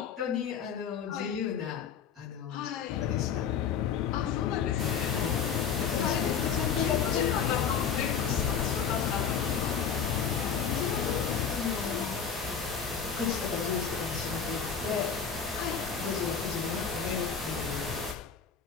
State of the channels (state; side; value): quieter; right; 6.9 dB